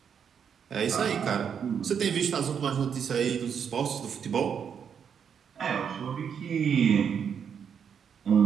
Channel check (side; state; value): left; quieter; 7.5 dB